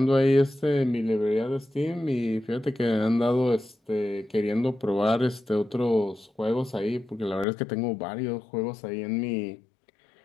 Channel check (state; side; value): drops out; right; at 7.5 s